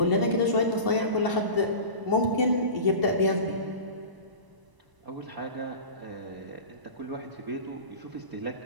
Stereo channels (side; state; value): left; late; 1.0 ms